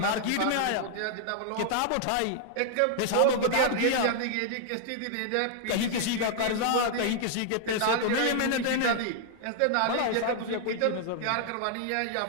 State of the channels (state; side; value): different; both; correlation 0.00